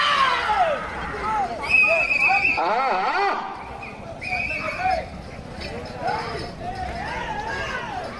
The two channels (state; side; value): identical; both; correlation 1.00